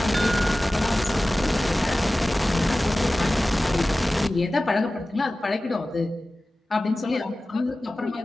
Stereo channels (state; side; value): normal; both; correlation 0.96